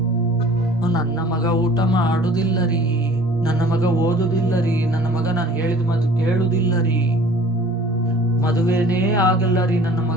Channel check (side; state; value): both; normal; correlation 0.49